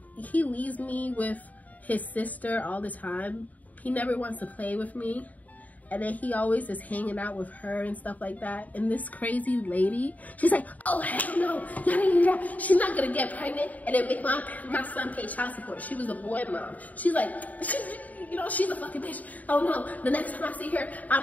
he leaves me with his sister all the time. He never wants to play with me. And then he always is hanging out with her and stuff like that. And this crazy lady, she's like, oh, hell no. She's not going to get pregnant and then make my son pay child support. She was a boy mom. She's like, she's a fucking bitch. Oh, no. The next time I see her,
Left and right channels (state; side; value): late; right; 0.075 ms